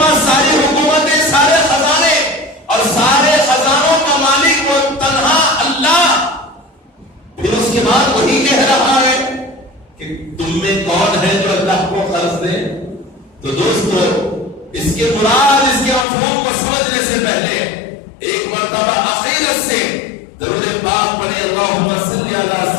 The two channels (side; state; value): right; drops out; at 16.1 s